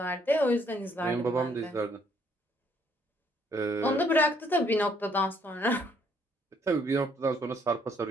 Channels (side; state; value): both; normal; correlation 0.67